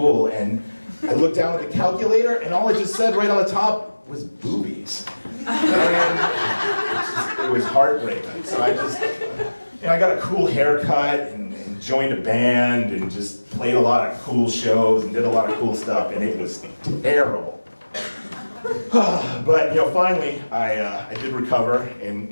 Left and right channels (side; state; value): both; inverted; correlation -1.00